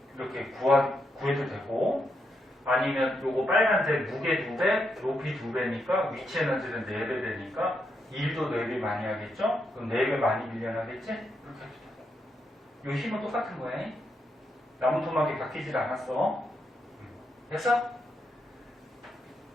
이렇게 구해도 되고 아니면 요거 빨간색 무게 2배, 높이 2배니까 위치 에너지는 4배 되니까 일도 4배 많이 하겠죠? 그럼 4배 많이 밀려나겠지? 이렇게 해도 돼. 요 힘은 똑같은 거야. 나무 토막이 바뀌질 않았어. 됐어?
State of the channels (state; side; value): normal; both; correlation 0.81